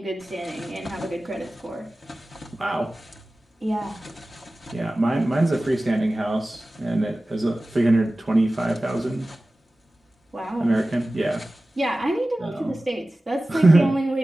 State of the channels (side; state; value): both; normal; correlation 0.96